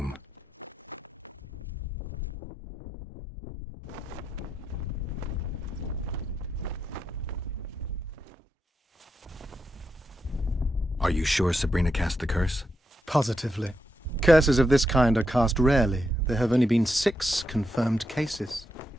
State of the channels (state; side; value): normal; both; correlation 0.83